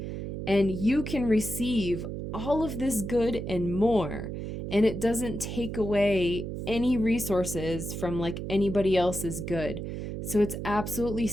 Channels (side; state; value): right; noise; hum, 5 dB below the sound